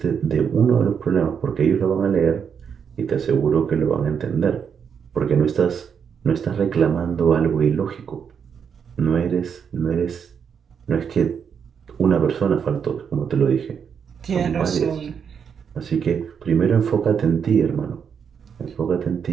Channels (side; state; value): left; quieter; 7.1 dB